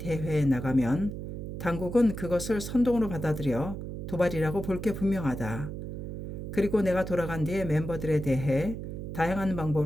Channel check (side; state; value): right; noise; hum, 7 dB below the sound